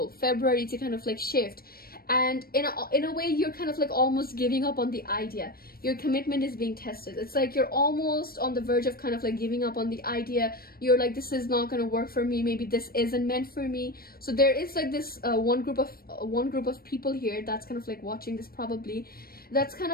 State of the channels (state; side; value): late; right; 0.44 ms